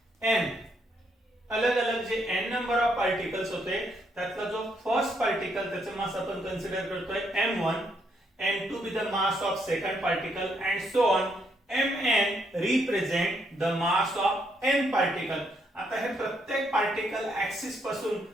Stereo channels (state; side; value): normal; both; correlation 0.74